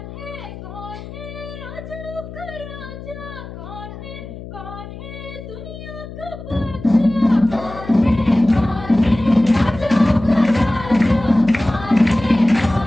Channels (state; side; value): noise; left; hum, 13 dB below the sound